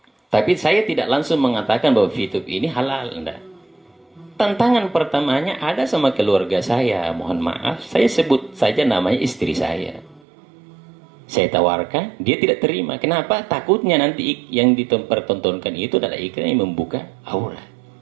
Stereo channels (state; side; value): drops out; left; at 10.2 s